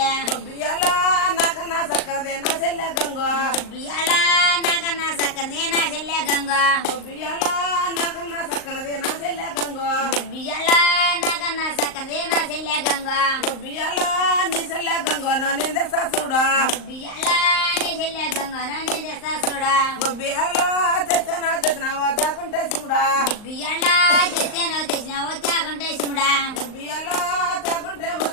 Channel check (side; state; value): right; late; 38 ms